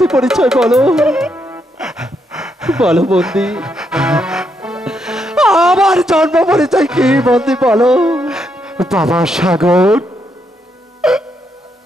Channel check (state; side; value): normal; both; correlation 0.78